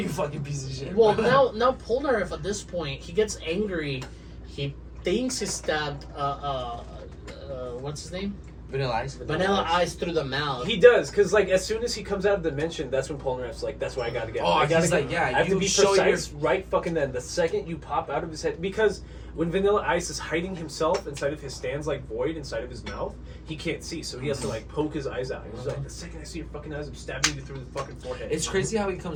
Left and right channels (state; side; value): identical; both; correlation 1.00